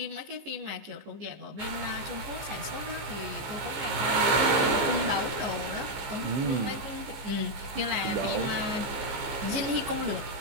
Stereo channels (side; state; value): left; late; 15 ms